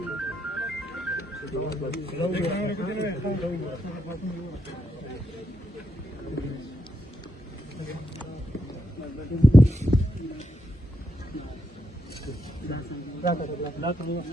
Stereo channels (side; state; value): both; normal; correlation 0.82